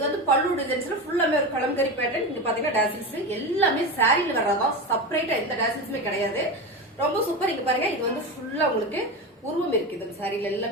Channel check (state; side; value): normal; both; correlation 0.21